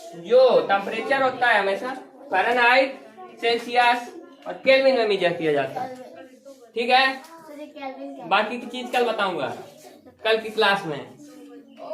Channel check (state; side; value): identical; both; correlation 1.00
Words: जो टेम्परेचर होता है हमेशा फ़ारेनहाइट, सेल्सियस और केल्विन में मेजर किया जाता है, ठीक है। बाकी की चीज कल बताऊंगा, कल की क्लास में,